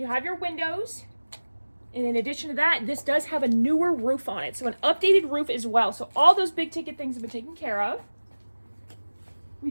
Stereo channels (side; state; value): both; inverted; correlation -1.00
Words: have your windows, and in addition to that, this does have a newer roof on it, so an updated roof as well. So all those big ticket things have been taken care of. We